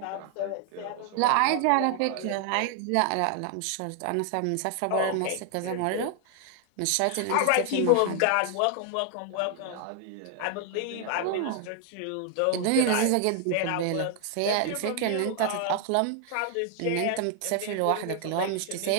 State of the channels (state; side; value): different; both; correlation 0.00